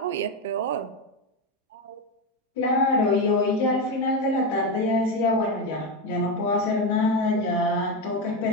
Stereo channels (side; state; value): both; normal; correlation 0.12